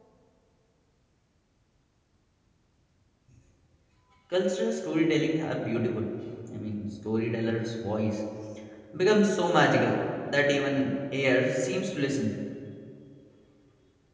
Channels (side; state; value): both; identical; correlation 1.00